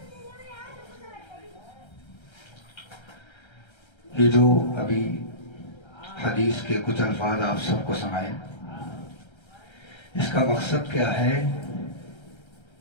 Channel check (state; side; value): late; right; 1.3 ms